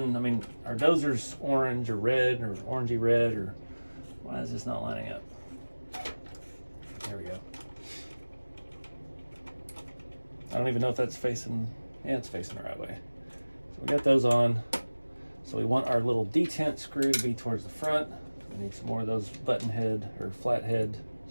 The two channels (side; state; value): both; inverted; correlation -1.00